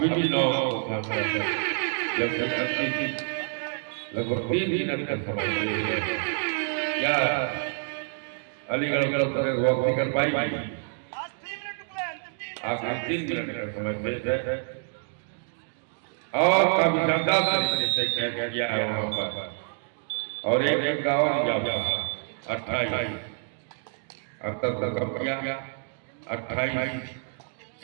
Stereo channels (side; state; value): left; silent; 60 dB below the other